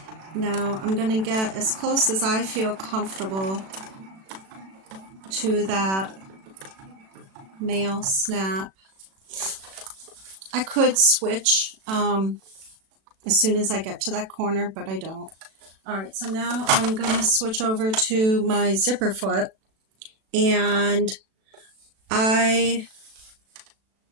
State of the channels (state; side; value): late; left; 36 ms